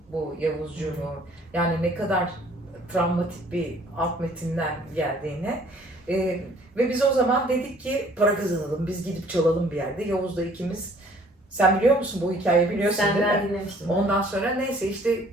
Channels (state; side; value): normal; both; correlation 0.57